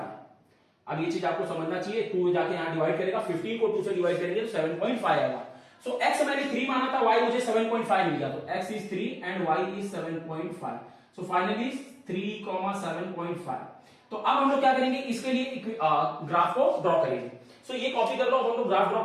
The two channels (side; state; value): both; identical; correlation 1.00